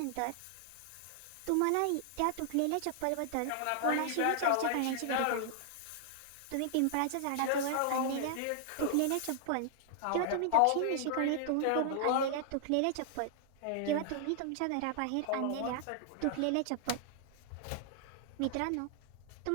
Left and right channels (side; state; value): both; different; correlation -0.01